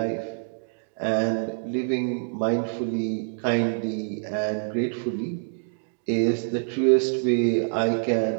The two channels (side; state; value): left; silent; digital silence